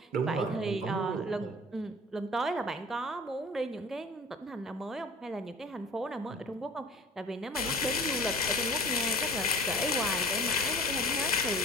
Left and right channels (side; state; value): both; normal; correlation 0.44